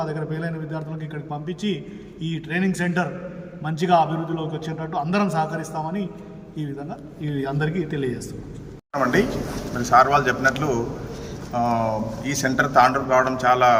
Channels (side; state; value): both; identical; correlation 1.00